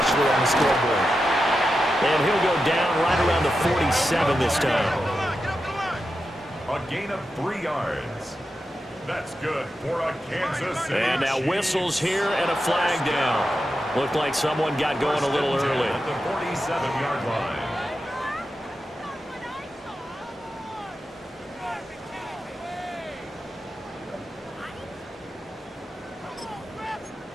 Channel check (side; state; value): both; normal; correlation 0.89